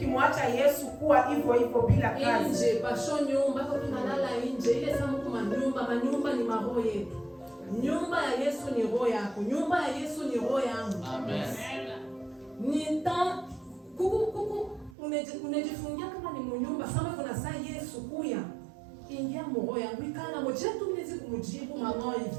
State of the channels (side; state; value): left; drops out; at 15.0 s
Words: Yesu kuwa hivyo bila kazi. Nje pasho nyumba kwa tunalala nje, ile samu kwa manyumba ni maroho yetu. Nyumba ya Yesu ni roho yako, nyumba ya Yesu ni roho yangu. Amen. Nita kuku unajifungia kama ni mnyumba sama kuna saa Yesu kuya. Ingia roho yangu ikana moja tu mnezi kumjibu mama hivi.